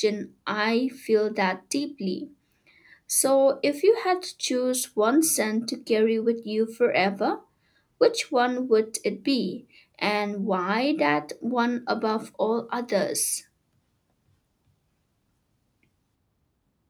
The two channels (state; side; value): identical; both; correlation 1.00